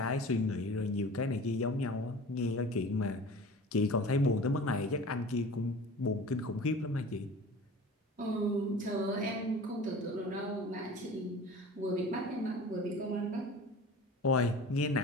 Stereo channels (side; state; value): both; normal; correlation 0.39